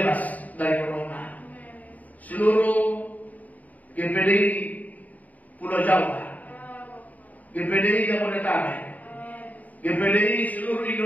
dari corona. Seluruh GPDI Pulau Jawa, GPDI Jabodetabek, GPDI seluruh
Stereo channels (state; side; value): late; right; 0.075 ms